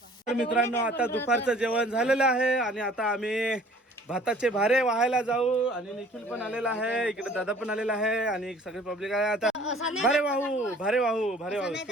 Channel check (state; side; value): normal; both; correlation 0.52